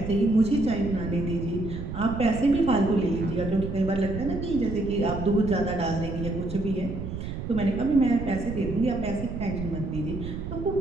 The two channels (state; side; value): noise; right; rumble, 7 dB below the sound